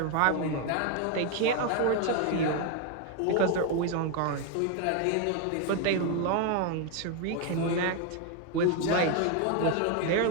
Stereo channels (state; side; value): different; both; correlation 0.01